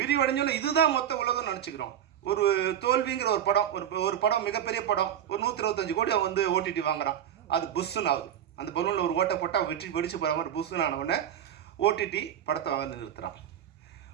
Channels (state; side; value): quieter; left; 10.1 dB